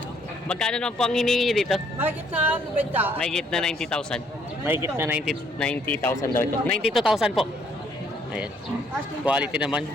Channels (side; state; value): both; normal; correlation 0.66